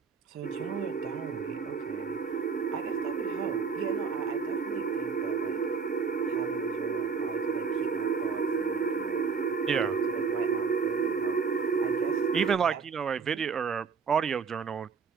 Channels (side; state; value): left; quieter; 5.7 dB